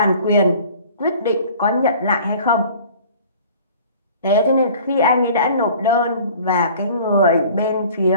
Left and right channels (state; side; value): inverted; both; correlation -0.48